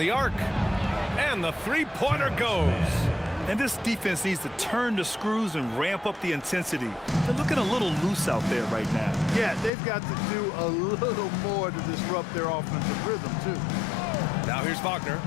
arc. And the three-pointer goes. And this defense needs to turn the screws and ramp up the intensity. They're looking a little loose out there right now. Yeah, they've got to do a little more to disrupt their offensive rhythm, too. Now here's Wagner.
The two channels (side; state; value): right; drops out; at 9.7 s